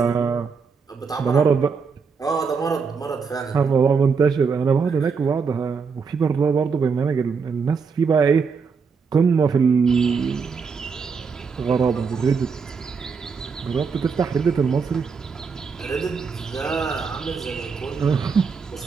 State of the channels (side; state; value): left; quieter; 5.5 dB